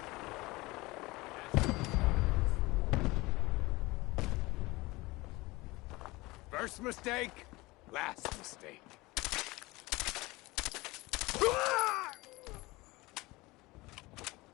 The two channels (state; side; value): quieter; right; 21.8 dB